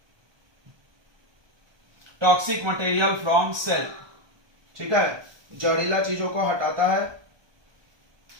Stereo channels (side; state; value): left; late; 1.2 ms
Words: cell, ठीक है, जहरीला चीजों को हटाता है,